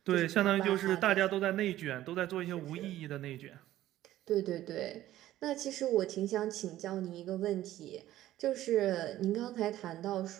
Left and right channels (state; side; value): quieter; left; 14.0 dB